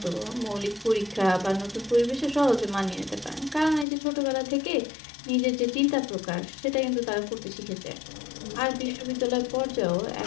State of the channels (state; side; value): drops out; right; at 3.9 s